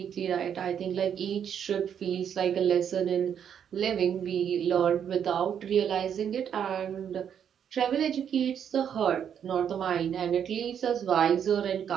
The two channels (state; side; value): quieter; left; 8.5 dB